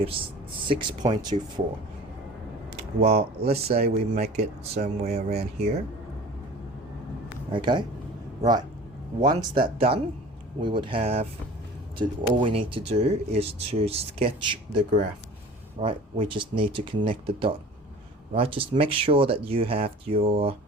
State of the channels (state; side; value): normal; both; correlation 0.42